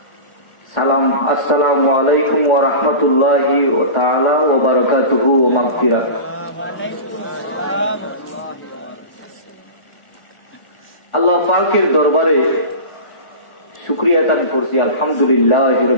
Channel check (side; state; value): right; late; 1.4 ms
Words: সালাম, আসসালামু আলাইকুম ওয়া রাহমাতুল্লাহি ওয়া তাআলা ওয়া বারাকাতুহু ওয়া মাগফিরাহ। আল্লাহ পাকের দরবারে শুকরিয়া আদায় করছি, আলহামদুলিল্লাহি